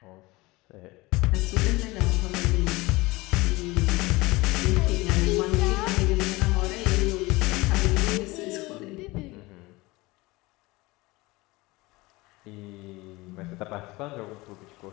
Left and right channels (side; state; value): right; quieter; 21.8 dB